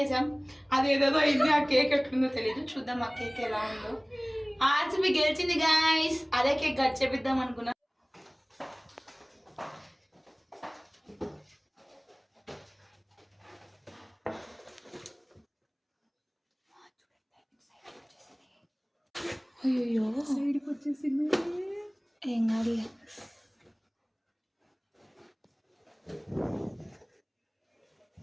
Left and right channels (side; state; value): both; identical; correlation 1.00